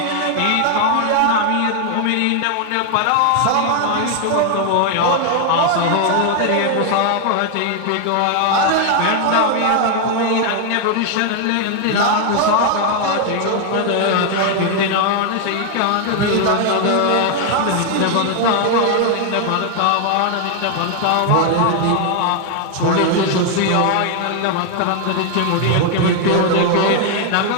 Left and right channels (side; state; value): both; different; correlation 0.00